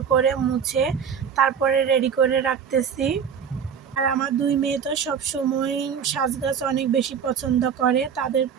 করে মুছে তারপরে রেডি করে রাখতেছি। আর আমার দুই মেয়ে তো সবসময় সাজগাছ অনেক বেশি পছন্দ করে, তাদের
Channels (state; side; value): quieter; left; 7.3 dB